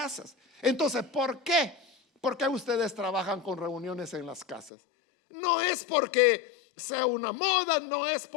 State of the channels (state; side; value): drops out; right; at 4.7 s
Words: Entonces, ¿por qué? ¿Por qué ustedes trabajan con reuniones en las casas? No es porque sea una moda, no es